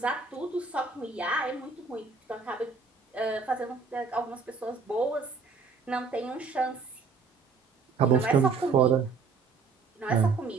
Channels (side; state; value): left; quieter; 4.8 dB